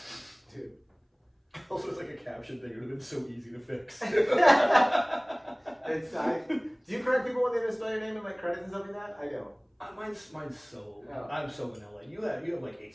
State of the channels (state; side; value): identical; both; correlation 1.00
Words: dude. Also, it's like a caption thing. It would have been so easy to fix. It's do you correct people when they misspell your name in like credits and stuff like that? I don't. Mine's so. Oh. I'm so vanilla. You have like